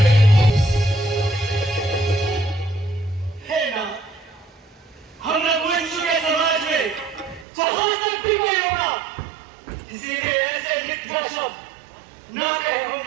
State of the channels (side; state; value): left; drops out; at 7.5 s